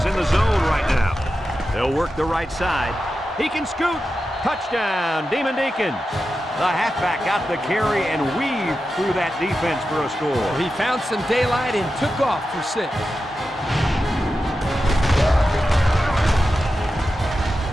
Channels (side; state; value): both; normal; correlation 0.91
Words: in the zone right now. They'll work the right side. He can scoot. Touchdown, Demon Deacons. The halfback got the carry and weaved through that defense for a score. He found some daylight and took off for 6.